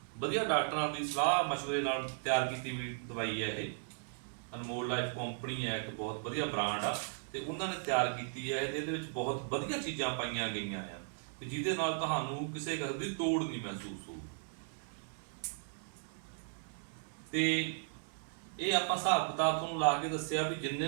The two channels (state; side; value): silent; left; 53 dB below the other